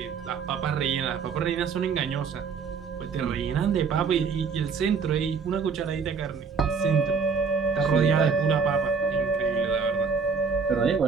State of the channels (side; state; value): left; quieter; 5.5 dB